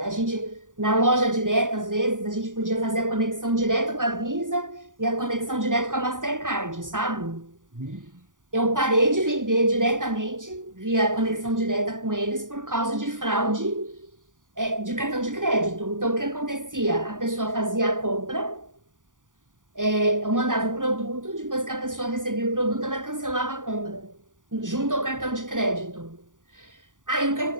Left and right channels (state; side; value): late; left; 0.88 ms